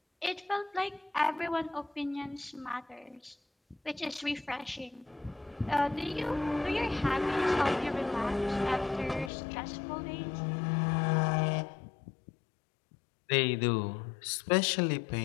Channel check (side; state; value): right; drops out; at 9.3 s